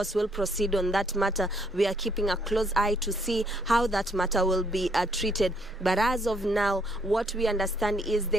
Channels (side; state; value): both; normal; correlation 0.69